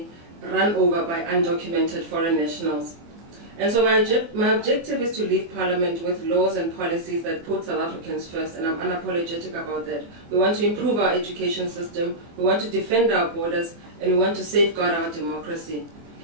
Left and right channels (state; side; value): late; left; 24 ms